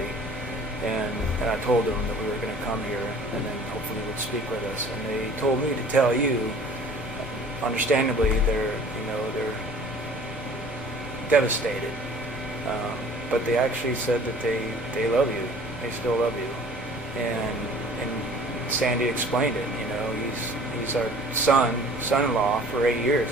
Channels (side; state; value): both; normal; correlation 0.49